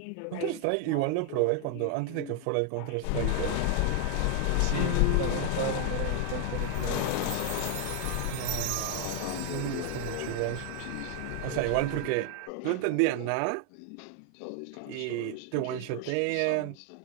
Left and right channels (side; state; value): both; different; correlation 0.00